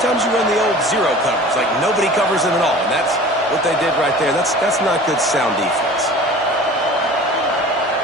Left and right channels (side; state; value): both; normal; correlation 0.42